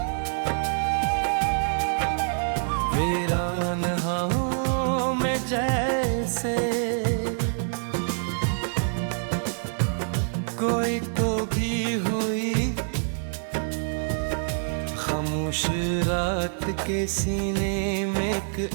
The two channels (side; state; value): left; silent; digital silence